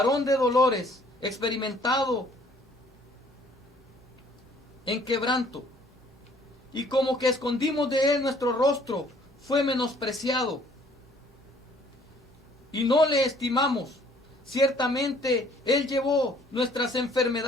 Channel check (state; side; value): normal; both; correlation 0.59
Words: de dolores, experimentado en quebranto, y como que escondimos de él nuestro rostro, fue menospreciado y no le estimamos. Ciertamente él llevó nuestras